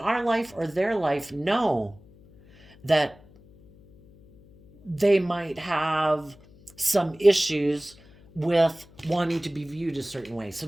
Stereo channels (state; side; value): noise; left; hum, 25 dB below the sound